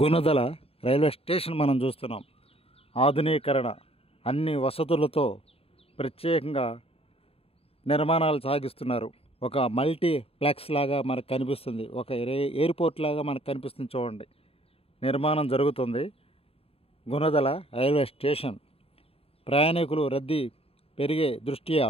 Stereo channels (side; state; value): right; late; 0.28 ms